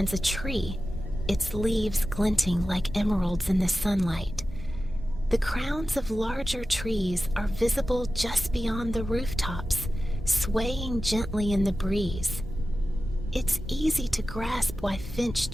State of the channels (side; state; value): both; normal; correlation 0.94